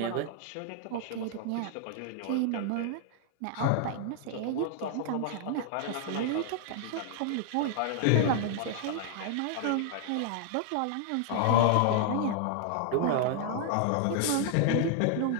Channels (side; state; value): both; different; correlation -0.01